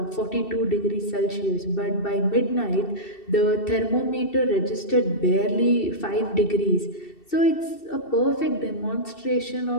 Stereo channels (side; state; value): right; late; 2.7 ms